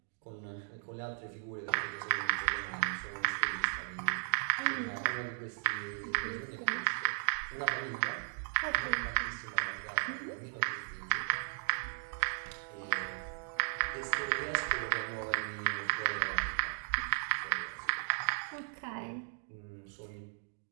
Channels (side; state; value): left; silent; digital silence